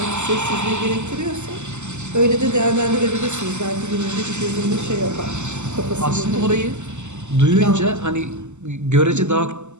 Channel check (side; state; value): left; late; 0.83 ms